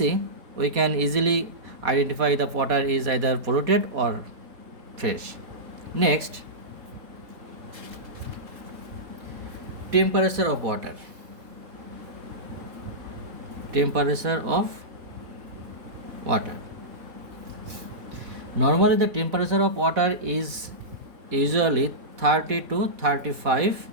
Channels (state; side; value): late; left; 3.7 ms